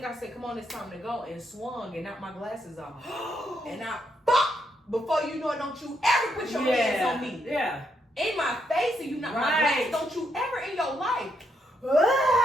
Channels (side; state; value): both; normal; correlation 0.77